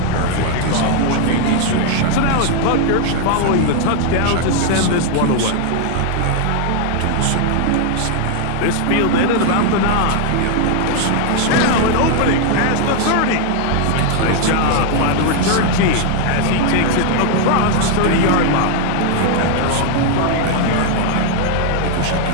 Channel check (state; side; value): different; both; correlation 0.00